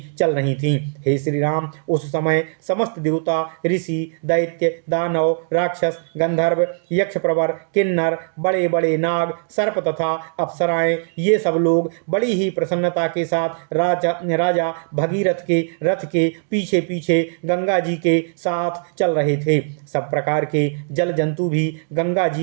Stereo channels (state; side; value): silent; left; digital silence